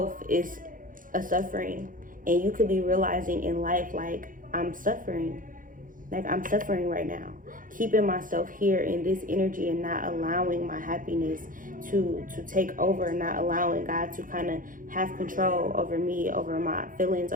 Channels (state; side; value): late; left; 0.39 ms